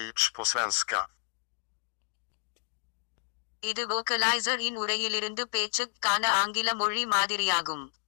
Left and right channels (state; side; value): silent; right; digital silence